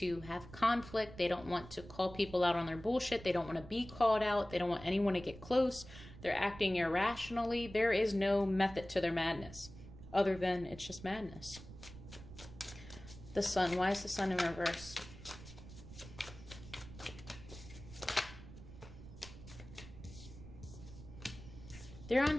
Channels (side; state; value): right; noise; rumble, 15 dB below the sound